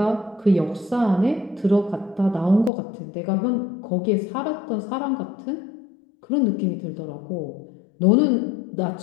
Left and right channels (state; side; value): drops out; right; at 2.7 s